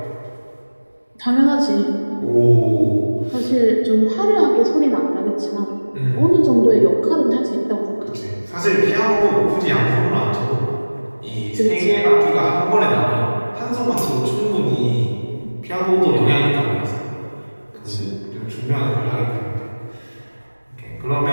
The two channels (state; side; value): inverted; both; correlation -1.00